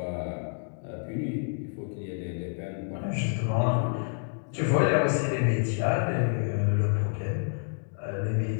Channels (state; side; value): silent; right; digital silence